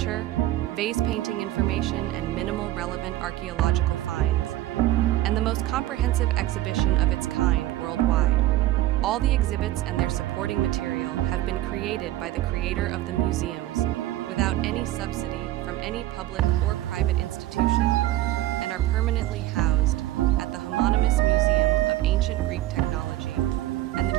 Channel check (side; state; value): left; quieter; 15.0 dB